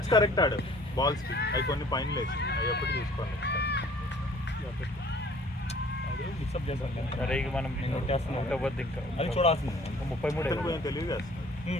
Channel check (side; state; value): both; normal; correlation 0.53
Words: కరెక్ట్ ఆడు బాల్స్ కి అవి కొన్ని పైన లేచి అవి ఎప్పుడు చూసుకోండి సరే ఇక మనం ఉండవద్దు ఇంకా అది చూడాల్సింది 33 కొంచెం